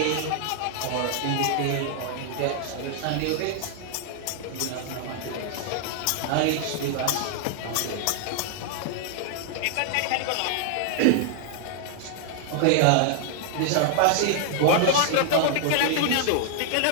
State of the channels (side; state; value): both; different; correlation 0.00